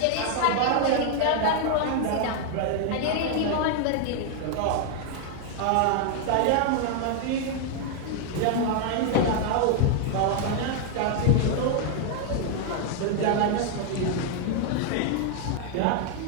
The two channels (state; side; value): different; both; correlation 0.00